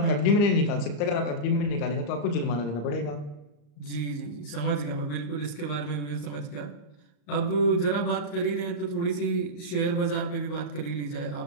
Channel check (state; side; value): late; right; 34 ms